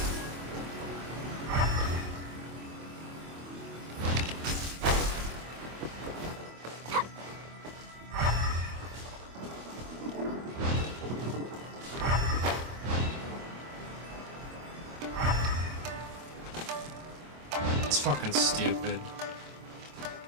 It's fucking stupid.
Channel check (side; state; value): left; late; 25 ms